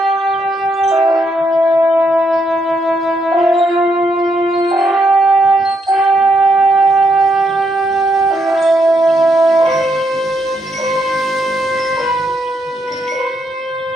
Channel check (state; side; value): normal; both; correlation 0.77